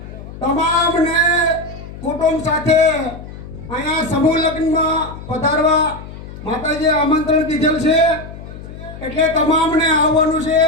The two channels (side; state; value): left; noise; hum, 13 dB below the sound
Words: તમામને કુટુંબ સાથે અહીંયા સમૂહ લગ્નમાં પધારવા માતાજીએ આમંત્રણ દીધેલ છે. એટલે તમામને આવવાનું છે.